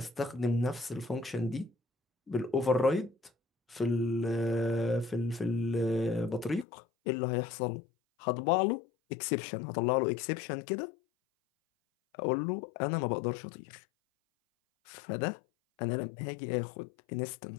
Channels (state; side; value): drops out; right; at 6.7 s